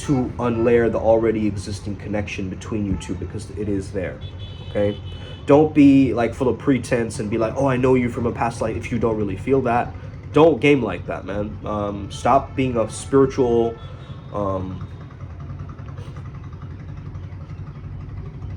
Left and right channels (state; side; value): identical; both; correlation 1.00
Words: unlayer the already existing connection between you two, because it is there, okay? Don't be like full of pretense and be like, oh, I know you from a past life, if you don't really feel that. Don't game like that, man. Stop being a spiritual